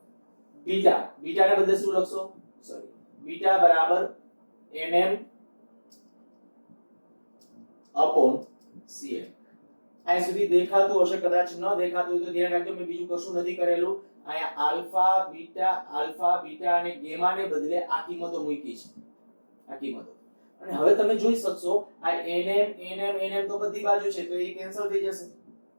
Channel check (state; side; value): inverted; both; correlation -1.00